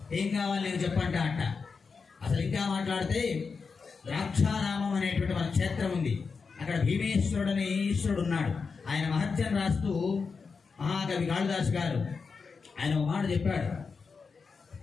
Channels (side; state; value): right; quieter; 5.1 dB